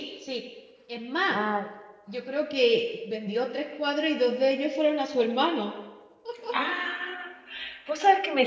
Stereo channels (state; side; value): identical; both; correlation 1.00